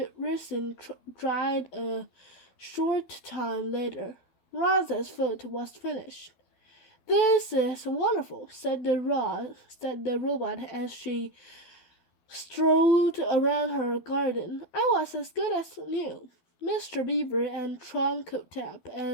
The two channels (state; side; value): late; right; 12 ms